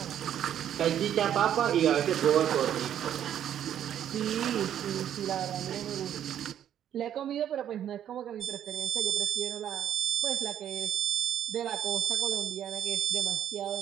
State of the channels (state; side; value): quieter; left; 10.2 dB